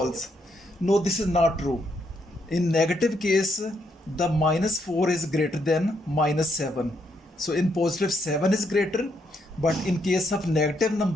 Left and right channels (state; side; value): normal; both; correlation 0.76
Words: No, this is not true. In negative case, the -4 is greater than -7. So in positive 7 is greater, but in case of negative